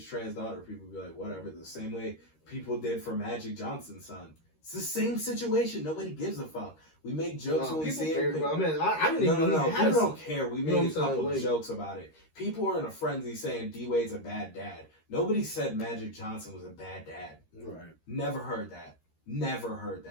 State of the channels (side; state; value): right; late; 13 ms